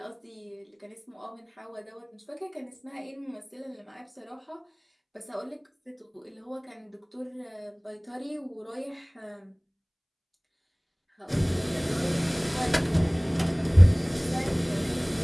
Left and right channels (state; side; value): identical; both; correlation 1.00